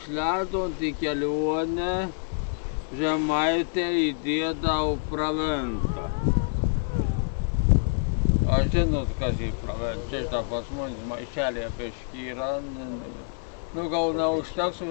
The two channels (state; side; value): silent; right; 60 dB below the other